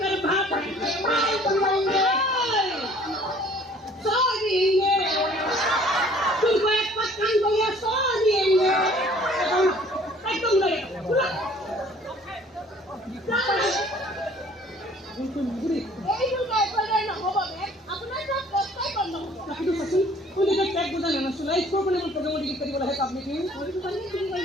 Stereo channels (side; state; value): both; normal; correlation 0.54